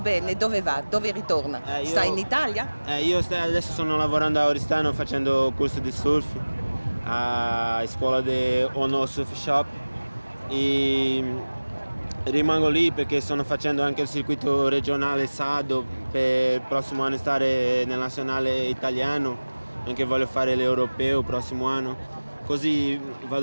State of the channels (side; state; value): both; inverted; correlation -1.00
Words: dove va? Dove ritorna? Sta in Italia? Io adesso sono lavorando a Oristano facendo corso di surf a scuola di Ono Surf Shop e rimango lì perché sto facendo anche il circuito regionale Sado per il prossimo anno stare nel nazionale italiano, anche voglio fare l'europeo il prossimo anno. Così